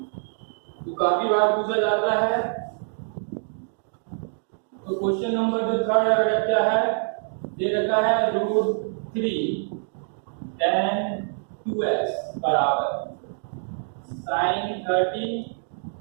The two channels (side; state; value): left; silent; digital silence